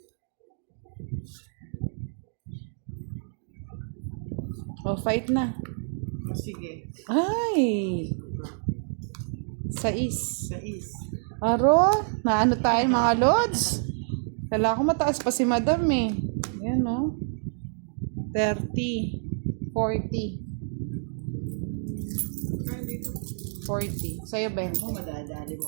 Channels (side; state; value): left; silent; digital silence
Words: O, fight na. Oh, sige. Ay! 6. Sais. Aro, naano tayo mga lods? Kailangan ko mataas pa si madam eh. Yan o. 30. 40. 40. Sa'yo, 20. Ako, madadali mo